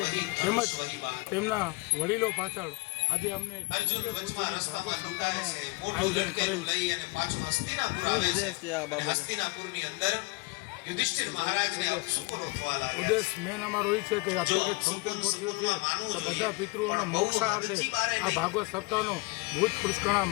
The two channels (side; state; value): right; quieter; 24.8 dB